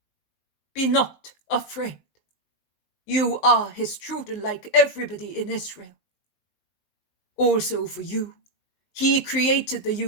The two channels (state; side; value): late; right; 19 ms